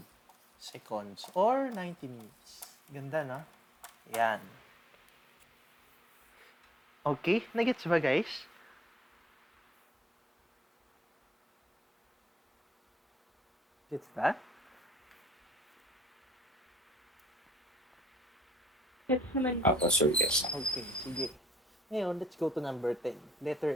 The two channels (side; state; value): both; normal; correlation 0.64